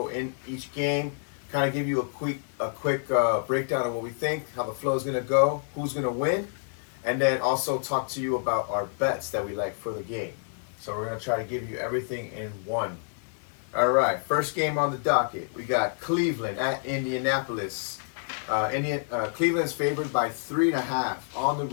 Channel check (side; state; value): right; silent; 59 dB below the other